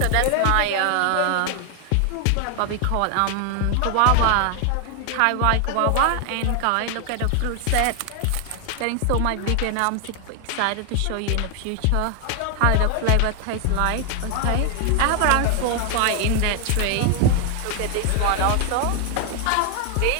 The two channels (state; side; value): different; both; correlation 0.00